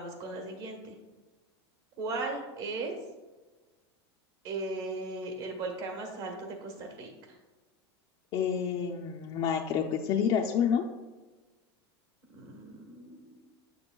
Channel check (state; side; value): quieter; right; 4.3 dB